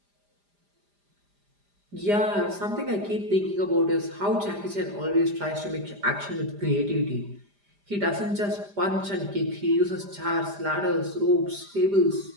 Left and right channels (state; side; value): late; left; 5.0 ms